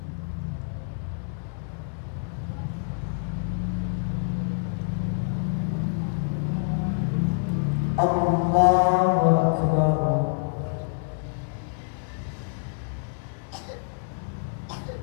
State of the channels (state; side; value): silent; right; digital silence